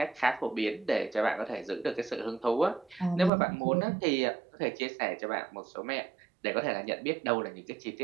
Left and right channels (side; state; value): left; drops out; at 3.3 s